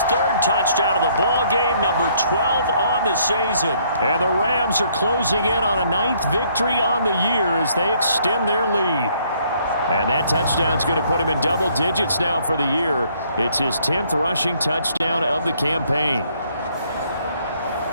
third touchdown of the ball game, number 12 on the season. And the Rams are closing in on a 9th victory on the year as they extend their lead. And that touchdown's going to put him in double digits now for the year. It's his 10th rushing touchdown of the campaign.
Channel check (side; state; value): both; inverted; correlation -0.66